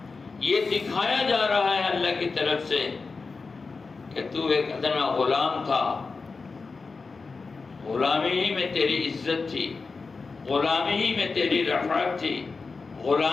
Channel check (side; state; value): right; quieter; 4.4 dB